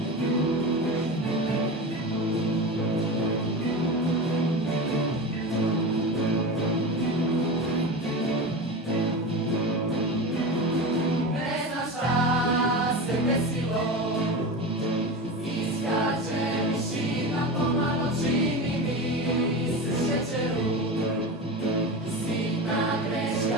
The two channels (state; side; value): normal; both; correlation 0.25